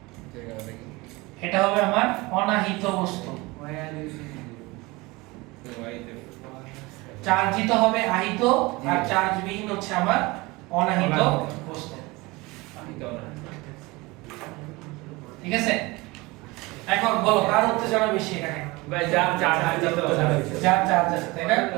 এটা হবে আমার অনাহিত বস্তু। চার্জিত হবে আহিত আর চার্জবিহীন হচ্ছে আমার অনাহিত বস্তু, ঠিক আছে? এখন বলো কার উত্তেজনা বেশি এখানে? ভাই যার চার্জ যার চার্জ আছে, তাই না?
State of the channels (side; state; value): left; quieter; 23.2 dB